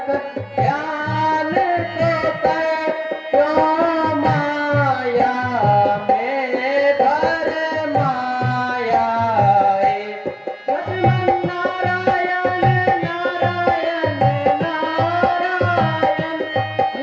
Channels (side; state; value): both; identical; correlation 1.00